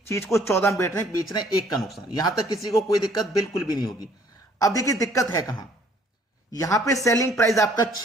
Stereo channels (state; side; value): normal; both; correlation 0.60